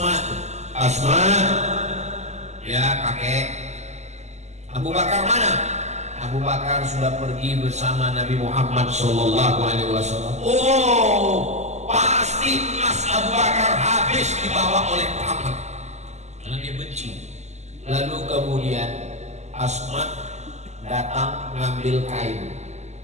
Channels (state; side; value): late; left; 0.33 ms